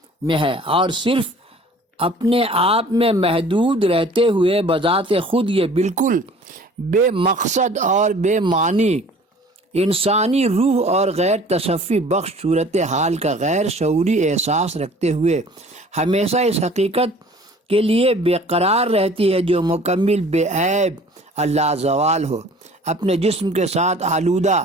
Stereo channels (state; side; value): normal; both; correlation 0.49